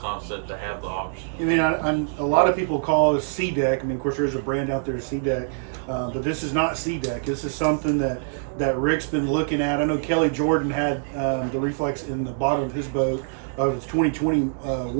to have the option. I mean, a lot of people call it C deck. I mean, of course, there's a brand out there, C deck, but this is not C deck. This is something that Rick's been looking at. I know Kelly Jordan had the Reflex in the bottom of his boat of his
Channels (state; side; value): silent; left; 62 dB below the other